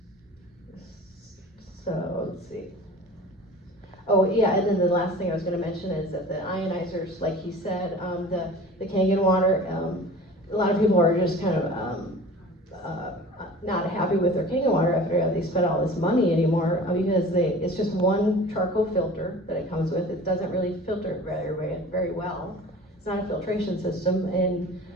let's see. Oh, yeah, and then the last thing I was gonna mention is that the ionizers, like he said, the Kangen water, a lot of people are just kind of, not happy with their Kangen water after they spent all this money anymore, because it's just one charcoal filter that it comes with. It doesn't really filter very well. It's not a filtration system, and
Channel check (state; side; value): normal; both; correlation 0.41